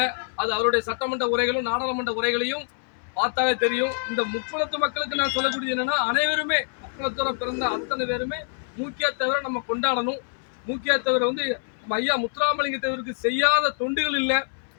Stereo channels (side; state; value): right; silent; digital silence